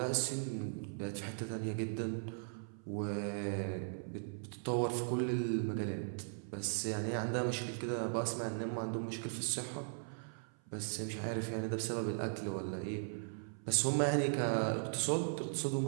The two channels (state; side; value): silent; left; 52 dB below the other